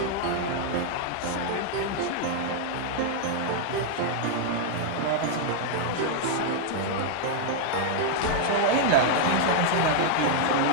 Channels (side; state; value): both; different; correlation -0.01